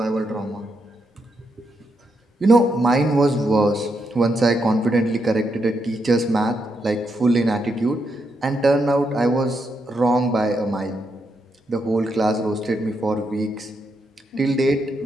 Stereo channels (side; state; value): both; normal; correlation 0.81